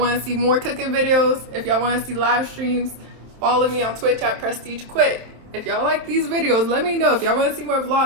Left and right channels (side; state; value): left; late; 27 ms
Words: to see more cooking videos, if y'all want to see live streams, follow me on Twitch at PrestigeQuick. If y'all like these videos, let me know. If y'all want to see more